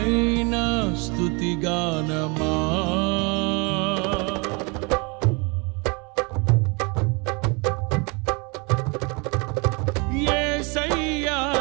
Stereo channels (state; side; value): quieter; left; 30.6 dB